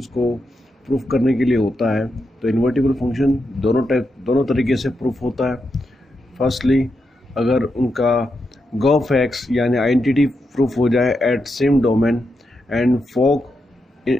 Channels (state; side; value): normal; both; correlation 0.85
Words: को प्रूफ करने के लिए होता है। तो इन्वर्टिबल फंक्शन दोनों तरीके से प्रूफ होता है। फर्स्टली, अगर उनका गॉफ एक्स यानी आइडेंटिटी प्रूफ हो जाए एट सेम डोमेन एंड फोक,